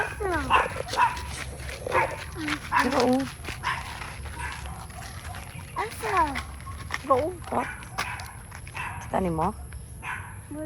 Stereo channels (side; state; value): both; identical; correlation 1.00